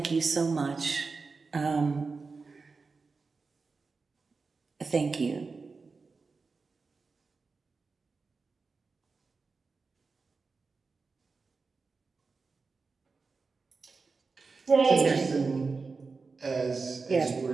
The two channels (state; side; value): quieter; left; 4.4 dB